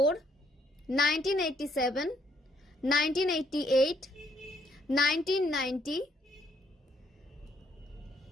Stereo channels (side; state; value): both; normal; correlation 0.70